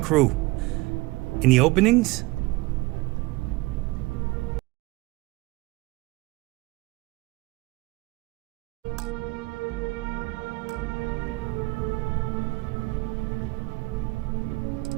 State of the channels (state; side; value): quieter; left; 22.4 dB